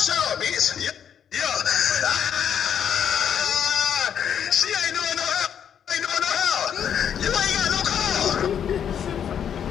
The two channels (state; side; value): quieter; right; 8.6 dB